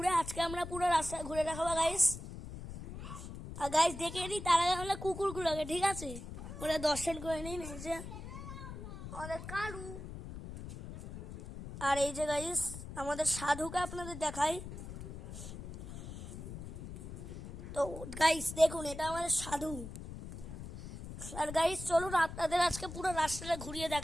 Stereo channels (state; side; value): noise; left; rumble, 10 dB below the sound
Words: আজকে আমরা পুরো রাস্তা ঘুরে দেখাবো গাইস। আর গাইস দেখে নিই তার আগে আমরা কুকুরগুলোকে, ঠিক আছে? ওরা দর্শন করে নিন। এই যে আমাদের কালু, আর এই যে গাইস আমাদের সাধুকে আপনাদের দেখাই। তো গাইস দেখুন, এটা আমাদের সাধু। আর গাইস চলুন আপনাদের আজকে পুরো রাস্তাটা ঘুরিয়ে